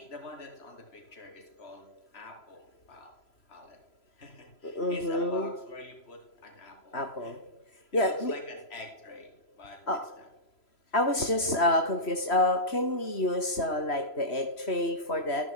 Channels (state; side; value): late; right; 3.0 ms